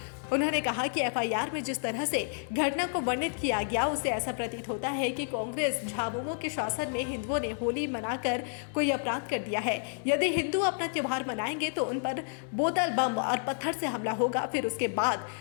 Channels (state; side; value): silent; right; digital silence